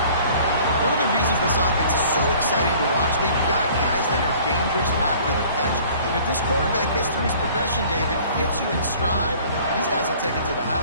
One of the reasons this offense is so exciting to watch, they've got guys that are dangerous after the catch. And if this quarterback gets through his progression, David, hits you in stride, these guys will take it to the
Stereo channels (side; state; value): both; inverted; correlation -0.51